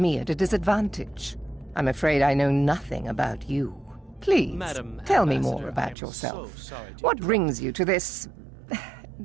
at a disadvantage. I'm afraid I know nothing about you. Please, Madam tell me Ambassador, more about I'm yourself. so sorry to What brings you to this...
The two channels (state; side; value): drops out; left; at 6.0 s